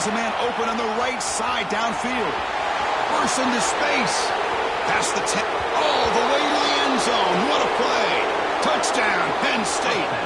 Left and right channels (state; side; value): identical; both; correlation 1.00